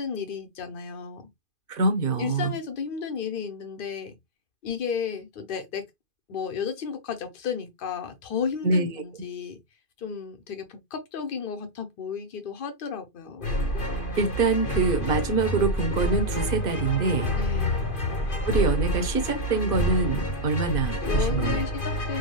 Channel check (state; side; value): late; right; 2.5 ms